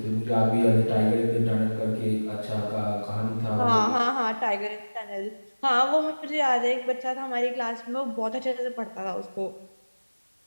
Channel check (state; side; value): inverted; both; correlation -1.00